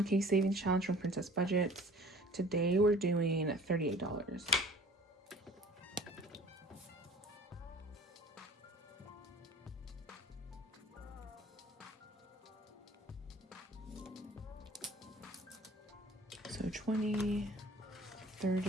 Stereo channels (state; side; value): normal; both; correlation 0.48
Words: savings challenge from Princess Budgets. Today we're doing $38. So 20,